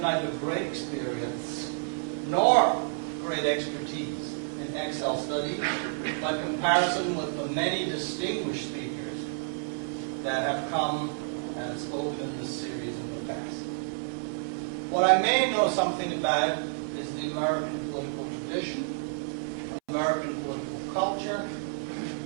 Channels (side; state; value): left; silent; 58 dB below the other